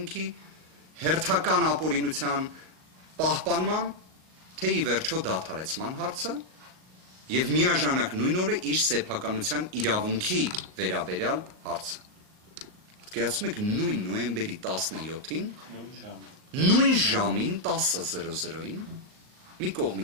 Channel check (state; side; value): late; left; 38 ms